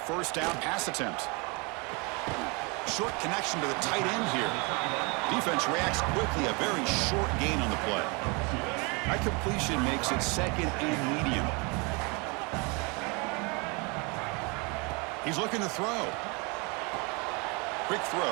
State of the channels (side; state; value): left; quieter; 30.3 dB